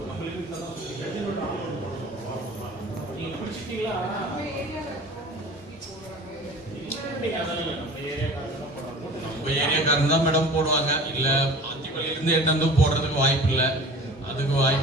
நம்ம ஏரியாக்காரன் தான் மேடம் போடுவாங்க. இல்லை ஆத்திப்பள்ளியிலேருந்து எடுத்து போடுறதுக்கு வாய்ப்பு இல்லை. அதுக்கு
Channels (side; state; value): both; normal; correlation 0.42